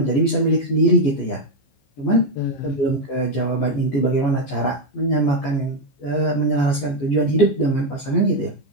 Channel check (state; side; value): late; right; 14 ms